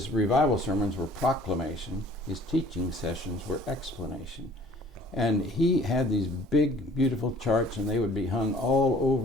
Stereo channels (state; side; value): normal; both; correlation 0.53